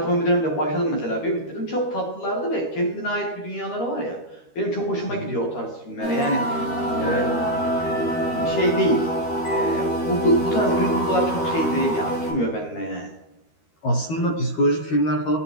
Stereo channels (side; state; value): right; late; 13 ms